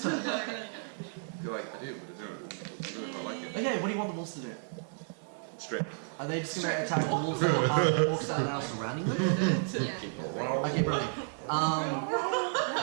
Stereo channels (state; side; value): silent; left; 56 dB below the other